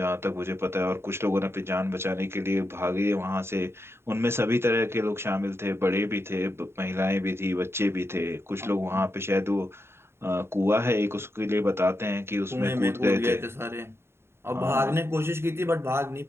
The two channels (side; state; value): left; late; 0.12 ms